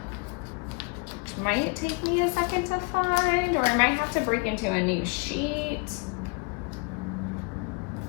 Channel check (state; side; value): quieter; right; 31.6 dB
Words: Might take me a second to find, or I might have to break into a new sheet.